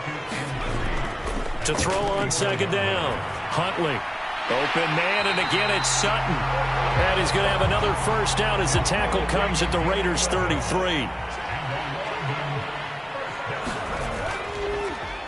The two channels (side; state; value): both; identical; correlation 1.00